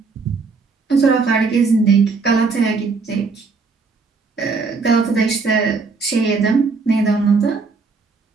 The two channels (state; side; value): quieter; left; 4.4 dB